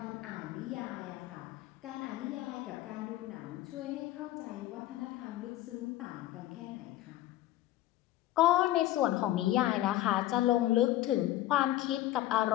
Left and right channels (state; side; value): quieter; right; 15.0 dB